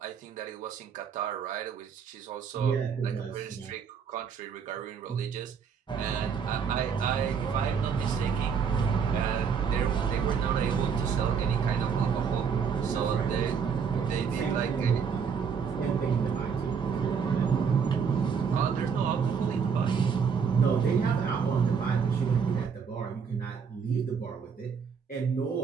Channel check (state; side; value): quieter; left; 6.5 dB